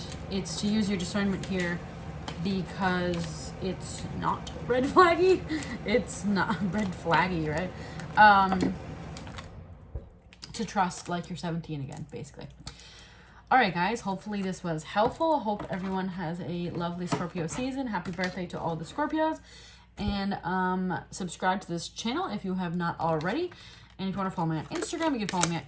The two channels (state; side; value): identical; both; correlation 1.00